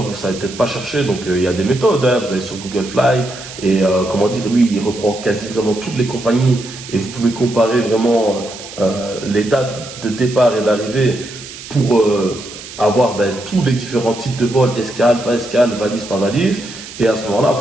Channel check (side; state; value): right; noise; hiss, 14 dB below the sound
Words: vous savez peut-être pas chercher, donc il y a des méthodes. Hein. Vous allez sur Google Fly et comment dire, lui, il reprend quasi vraiment toutes les compagnies et vous pouvez comparer vraiment les dates de départ et d'arrivée pour avoir tous les différents types de vols, escale, pas escale, valise, pas valise, et à ce moment-là,